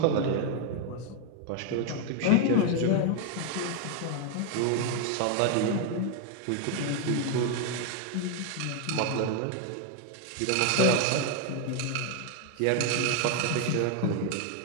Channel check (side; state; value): both; different; correlation 0.00